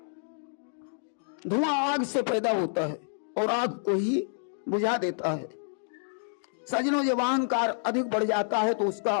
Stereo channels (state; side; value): silent; right; digital silence